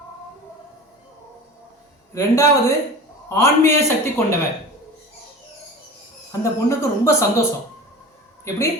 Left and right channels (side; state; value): both; normal; correlation 0.35